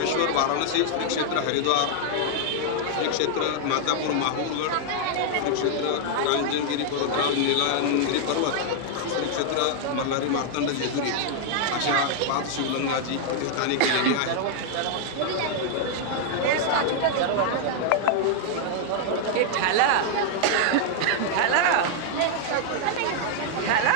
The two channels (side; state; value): both; different; correlation 0.00